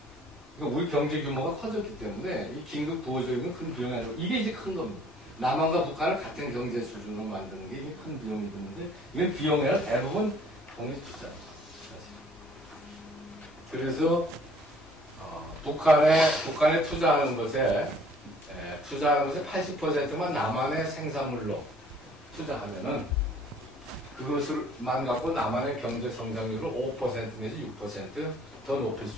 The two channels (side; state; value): both; normal; correlation 0.56